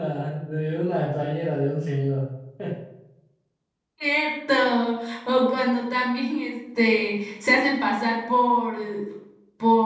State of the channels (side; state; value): both; identical; correlation 1.00